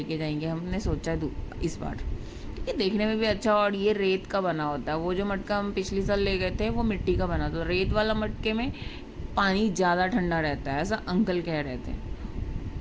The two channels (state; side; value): identical; both; correlation 1.00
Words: जाएंगे हमने सोचा इस बार। ये देखने में भी अच्छा, और ये रेत का बना होता है। वो जो मटका हम पिछली साल ले गए थे वो मिट्टी का बना था। रेत वाला मटके में पानी ज़्यादा ठंडा रहता है, ऐसा अंकल कह रहे थे।